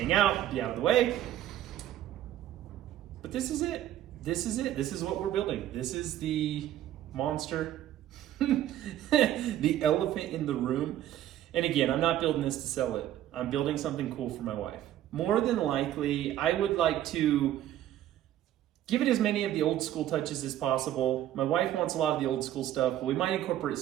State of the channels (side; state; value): left; quieter; 12.4 dB